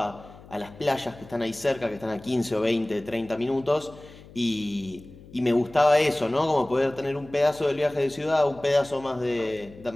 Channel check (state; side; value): noise; left; hum, 20 dB below the sound